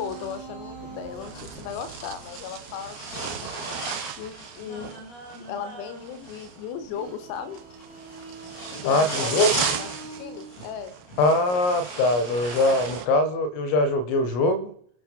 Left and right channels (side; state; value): right; late; 33 ms